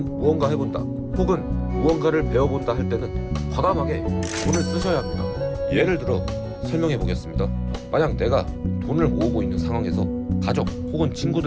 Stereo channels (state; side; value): identical; both; correlation 1.00